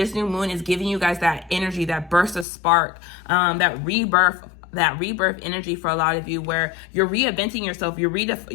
new moon is giving you guys that energy, that burst of spark, that rebirth energy for a lot of you, where you're reinventing yourself.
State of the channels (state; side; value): drops out; right; at 2.5 s